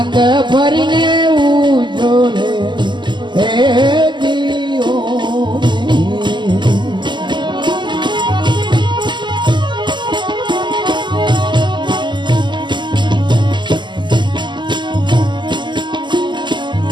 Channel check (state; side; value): late; left; 0.22 ms